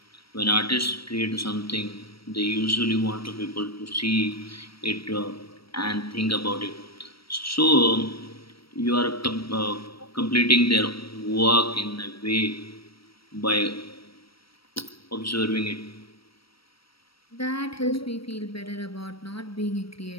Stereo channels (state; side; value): late; right; 0.75 ms